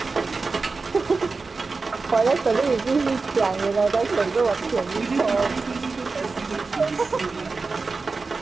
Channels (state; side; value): quieter; left; 4.1 dB